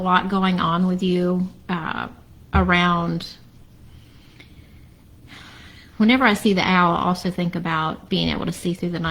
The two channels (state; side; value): identical; both; correlation 1.00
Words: going on with you around. Whenever I see the owl, I also think about being able to see through the